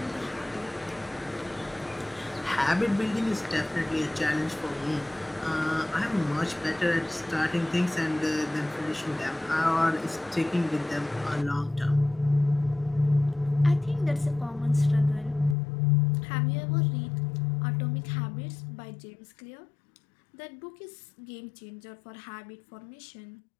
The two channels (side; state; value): right; drops out; at 15.6 s